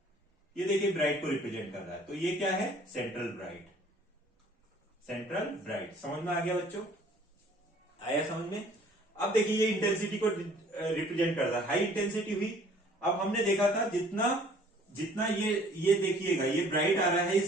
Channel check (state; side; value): normal; both; correlation 0.55